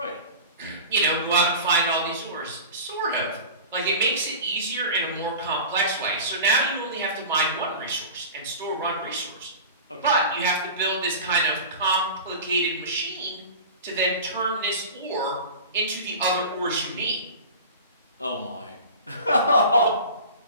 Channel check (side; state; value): both; inverted; correlation -0.34